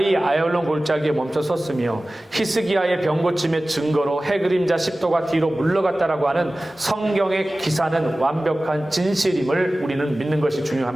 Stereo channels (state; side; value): normal; both; correlation 0.97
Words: 아얄론 골짜기에 멈춰섰으며 히스기야의 병 고침의 증거로 해 그림자 10도가 뒤로 물러갔다라고 하는 성경의 기사는 완벽한 진실임을 우리는 믿는 것이